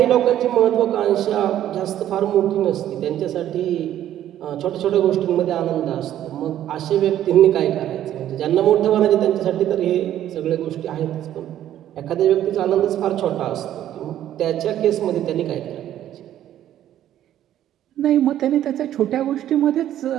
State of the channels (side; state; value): left; quieter; 11.8 dB